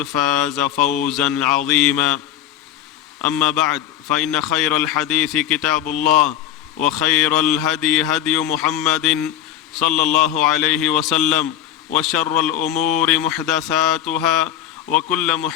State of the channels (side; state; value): right; quieter; 11.1 dB